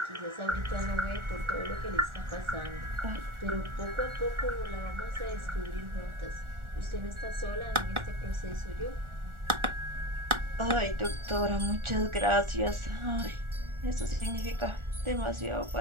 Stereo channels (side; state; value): left; late; 1.4 ms